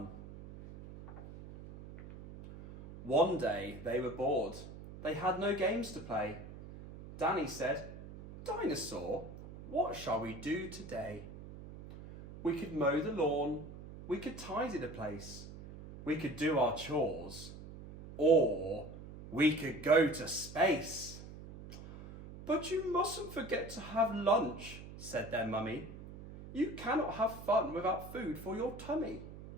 One day they were bored. They had no games to play. Danny said, "Dinosaur, what shall we do today? We could mow the lawn, we could tidy the place, we could do our chores, or we could go to space." "But you mustn't forget to have lunch," said their mummy. "You cannot have fun without food for your tummy."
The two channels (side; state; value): right; noise; hum, 14 dB below the sound